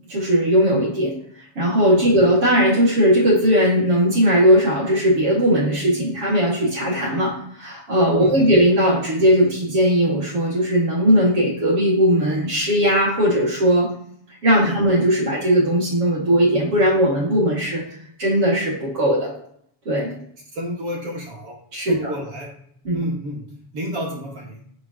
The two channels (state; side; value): late; left; 7.1 ms